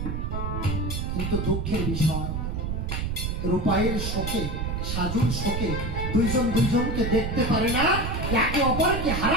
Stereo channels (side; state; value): right; noise; rumble, 2 dB below the sound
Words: কিন্তু দুঃখের বিষয়, রূপাইয়ের শোকে, সাজুর শোকে দুইজন দুইজনকে দেখতে পারে না, একে অপরকে